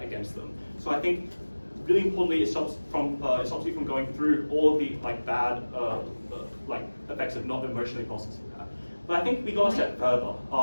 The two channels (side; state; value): both; inverted; correlation -1.00